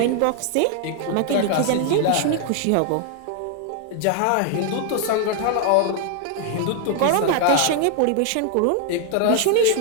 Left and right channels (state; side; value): different; both; correlation 0.00